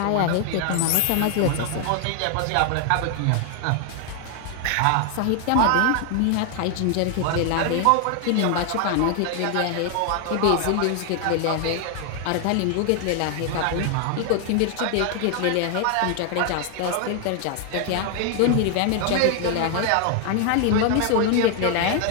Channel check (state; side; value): different; both; correlation 0.00